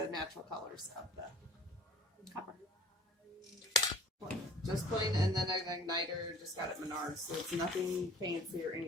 natural colors of the copper. Just plain, and then an igniter, just got it at Menards, so it's nothing fancy or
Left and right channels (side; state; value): both; normal; correlation 0.48